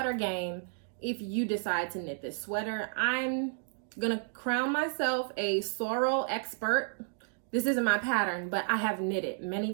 game if you decide to knit this sweater. I'm going to crown myself a sorrel expert. This isn't my pattern, but I have knitted many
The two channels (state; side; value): silent; left; digital silence